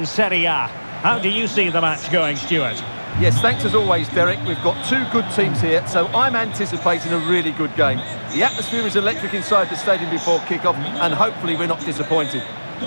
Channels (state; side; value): inverted; both; correlation -1.00